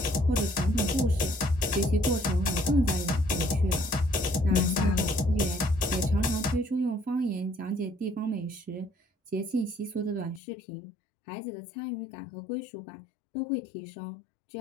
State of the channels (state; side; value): drops out; right; at 10.4 s